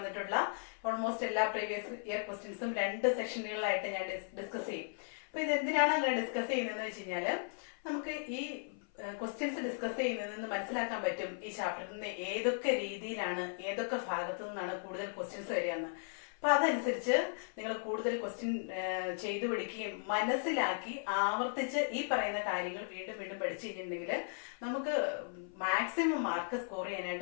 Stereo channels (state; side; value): silent; right; 53 dB below the other